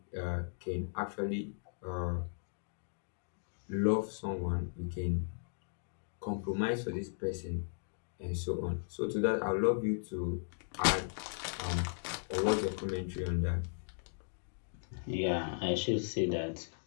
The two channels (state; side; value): silent; right; digital silence